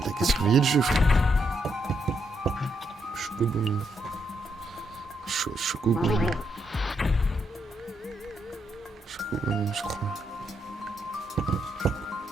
a qu'à surveiller le jeu, frère. Chocobo. Chocobo. Chocobo, je crois.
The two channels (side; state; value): both; normal; correlation 0.79